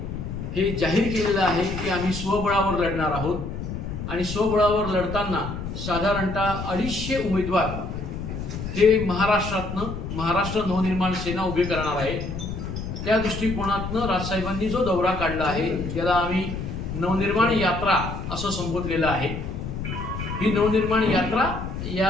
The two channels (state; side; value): noise; left; rumble, 6 dB below the sound